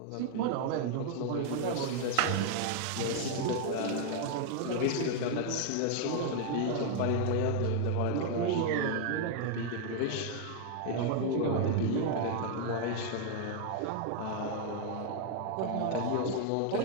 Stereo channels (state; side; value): different; both; correlation 0.00